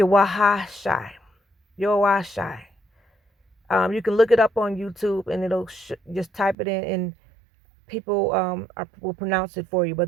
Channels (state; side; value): drops out; left; at 6.6 s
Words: Yahweh. You can look it up on YouTube, and it'll just type it in, and people will pronounce it for you.